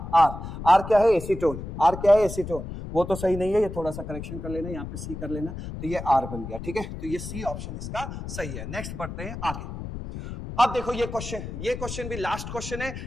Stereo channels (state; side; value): noise; left; rumble, 8 dB below the sound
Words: आर क्या है? एसीटोन। आर क्या है? एसीटोन। वो तो सही नहीं है, ये थोड़ा सा करेक्शन कर लेना, यहाँ पे सी कर लेना, तो ये आर बन गया, ठीक है। तो ये सी ऑप्शन इसका सही है। नेक्स्ट बढ़ते हैं आगे। अब देखो ये क्वेश्चन भी लास्ट क्वेश्चन है,